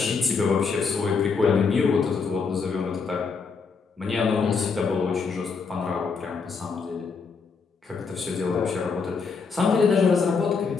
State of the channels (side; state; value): right; quieter; 5.1 dB